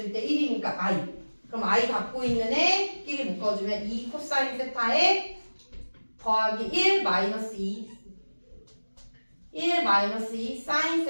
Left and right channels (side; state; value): both; inverted; correlation -1.00